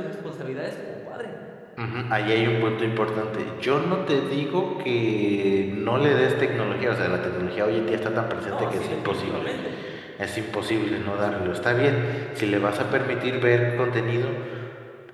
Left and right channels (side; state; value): both; identical; correlation 1.00